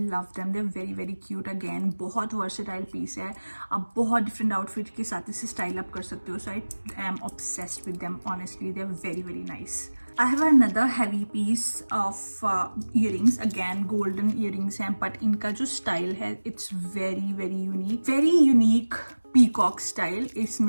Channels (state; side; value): inverted; both; correlation -1.00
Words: them. They are very very cute. Again बहुत वर्सेटाइल पीस है. आप बहुत डिफरेंट आउटफिट के साथ इसे स्टाइल अप कर सकते हो. So I am obsessed with them. Honestly they are very very nice. I have another heavy piece of earrings. Again golden earrings हैं, but इनका जो स्टाइल है it's very very unique. Very unique peacock style.